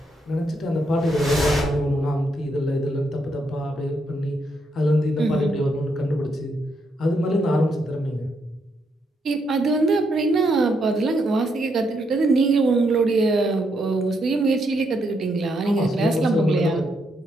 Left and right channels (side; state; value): both; normal; correlation 0.78